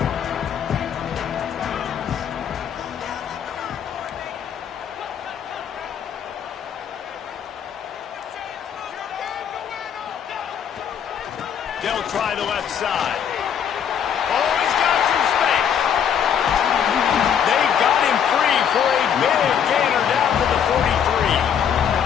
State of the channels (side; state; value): right; quieter; 8.3 dB